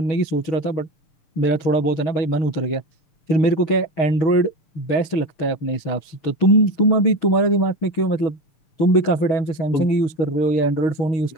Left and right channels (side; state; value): right; late; 6.3 ms